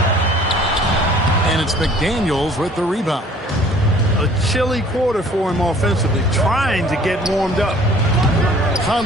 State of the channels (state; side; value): normal; both; correlation 0.53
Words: And it's McDaniels with the rebound. A chilly quarter for him offensively, trying to get warmed up.